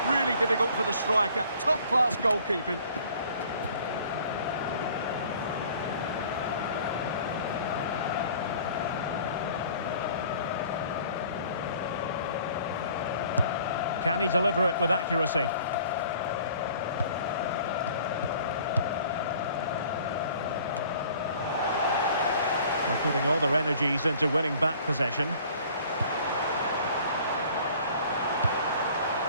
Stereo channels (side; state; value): both; inverted; correlation -0.52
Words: really difficult for the striker. Top-class goalkeeping. Can he deliver it with accuracy? They're putting all their energies into winning back possession.